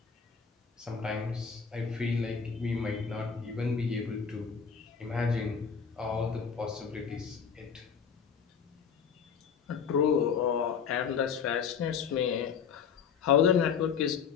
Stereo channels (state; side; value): quieter; right; 6.7 dB